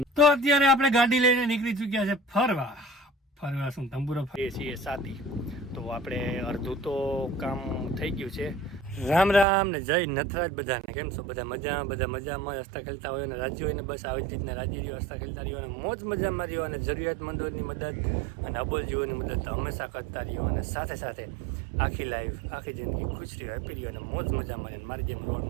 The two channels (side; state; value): left; drops out; at 9.5 s